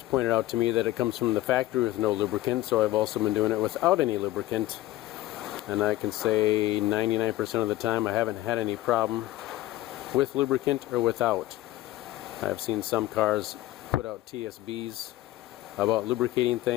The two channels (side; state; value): right; quieter; 16.0 dB